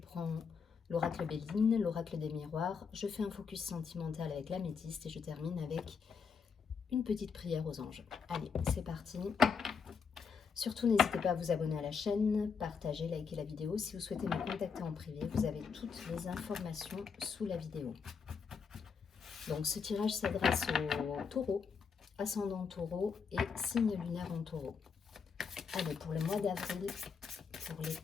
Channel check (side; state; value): right; quieter; 5.9 dB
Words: l'oracle Béline, l'oracle des miroirs. Je fais un focus sentimental avec l'améthyste et je termine avec une petite prière aux anges. Allez, c'est parti. Surtout, n'hésitez pas à vous abonner à la chaîne, partager, liker la vidéo. Si vous souhaitez me contacter en privé, vous avez toutes les informations sous la vidéo. Donc, ce tirage s'adresse aux taureaux, ascendant taureau et signe lunaire en taureau. Allez, pour le mois d'avril, pour les